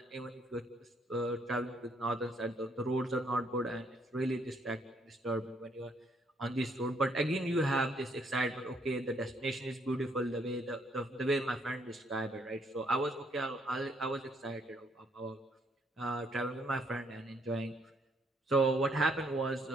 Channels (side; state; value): both; normal; correlation 0.69